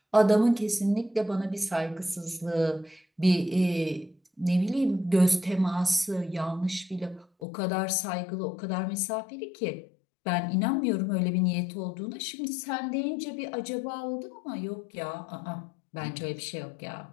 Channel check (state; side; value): drops out; right; at 7.2 s